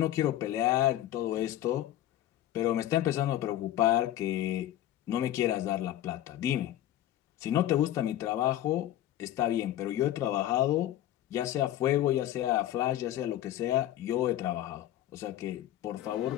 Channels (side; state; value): right; quieter; 13.1 dB